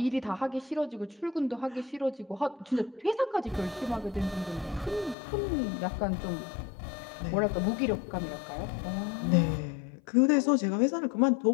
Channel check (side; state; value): right; drops out; at 5.2 s